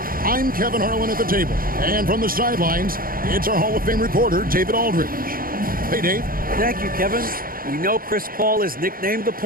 I'm Kevin Harlan at the table. And from the sidelines, it's our Hall of Fame reporter, David Aldridge. Hey, Dave. Thank you, Kevin. We know Chris Paul is nicknamed the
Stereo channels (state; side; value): late; left; 0.42 ms